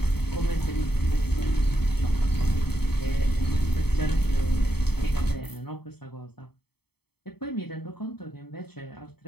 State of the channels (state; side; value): late; right; 0.97 ms